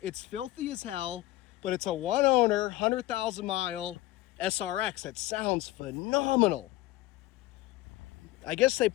It's filthy as hell, but it's a one owner, 100,000 mile SRX. That sounds phenomenal. I guess they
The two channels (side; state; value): right; quieter; 17.0 dB